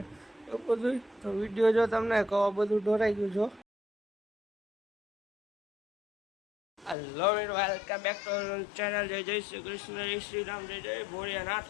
એવું બધું. તો વિડીયો જો તમને કહો બધું ઢોરાઈ ગયું છો. Hello welcome back to channel. જય જય શ્રી કૃષ્ણ, જય શ્રી રામ, જય જય ભોળિયાનાથ,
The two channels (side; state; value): right; drops out; at 7.0 s